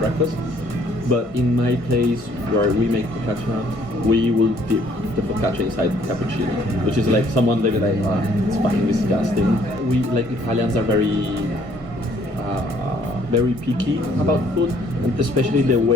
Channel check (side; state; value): left; late; 1.5 ms